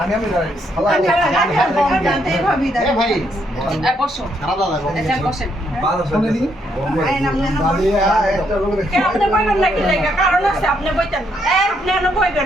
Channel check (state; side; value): normal; both; correlation 0.74